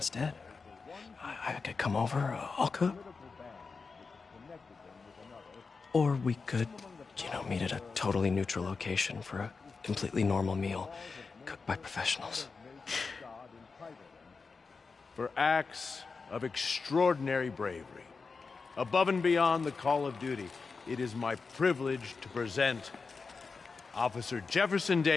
I could come over, I'll cook. Or we could, meet at a totally neutral location for a completely normal meal, cooked by professionals. For acts of extraordinary bravery, above and beyond the call of duty, it is my privilege to present Officer Jefferson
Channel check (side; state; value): right; quieter; 4.6 dB